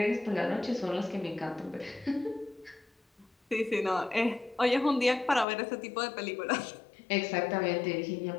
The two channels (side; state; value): right; drops out; at 5.5 s